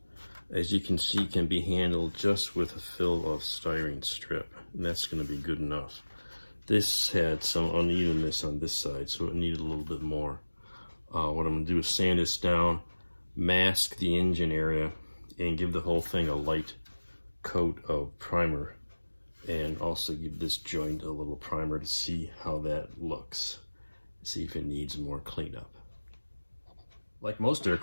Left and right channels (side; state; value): both; inverted; correlation -1.00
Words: as you can see, can be handled just with a fill of styrene strip, and that's going to be good enough. This had some unevenness on this side, so it needed a little bit more. What I'm going to do is sand this down, mask the engine area, and give the whole thing a light coat of primer and also give this joint a little primer to see how that looks. See if it needs more cleanup. Like most